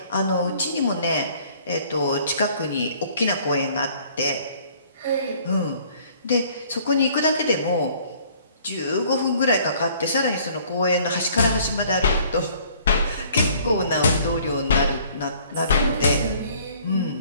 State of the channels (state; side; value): inverted; both; correlation -0.57